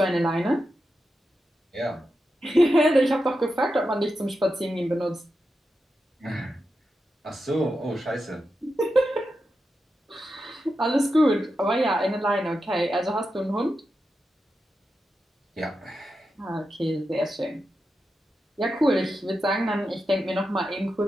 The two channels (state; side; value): normal; both; correlation 0.89